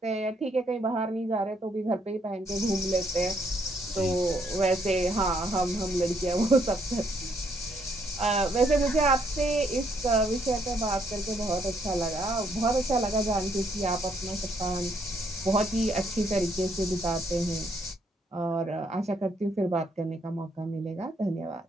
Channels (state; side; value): normal; both; correlation 0.71